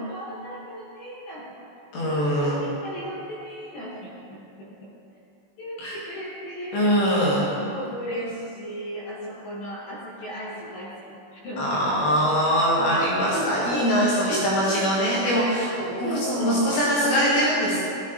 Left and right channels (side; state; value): right; late; 21 ms